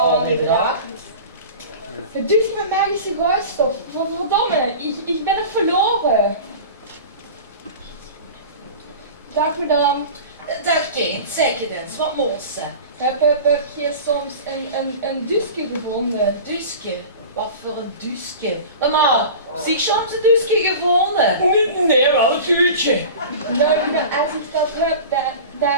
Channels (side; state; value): both; inverted; correlation -0.35